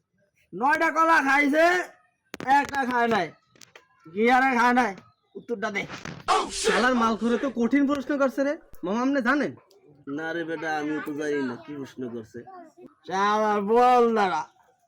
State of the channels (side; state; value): both; identical; correlation 1.00